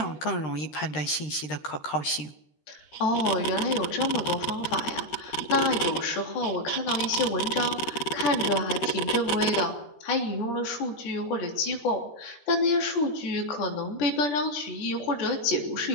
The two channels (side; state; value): right; late; 13 ms